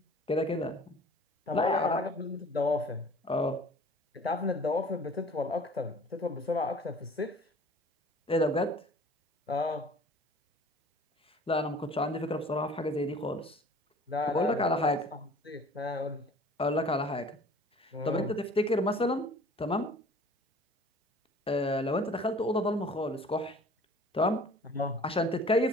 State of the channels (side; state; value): both; normal; correlation 0.49